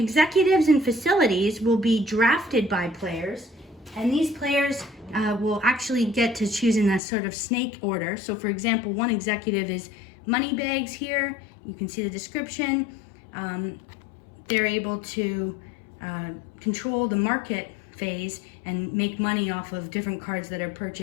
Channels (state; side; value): drops out; right; at 7.0 s